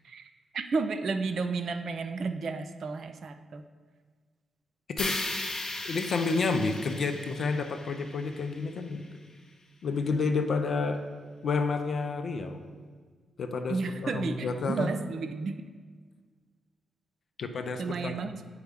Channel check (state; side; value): normal; both; correlation 0.78